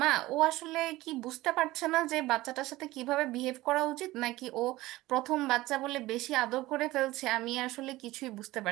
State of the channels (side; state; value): left; quieter; 18.2 dB